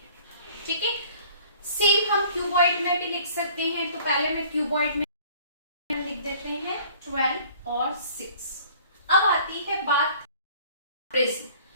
ठीक है, सेम हम क्यूबॉइड में भी लिख सकते हैं। तो पहले मैं क्यूबॉइड में लिख देते हैं 12 और 6। अब आती है बात प्रिज्म।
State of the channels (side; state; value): both; inverted; correlation -0.52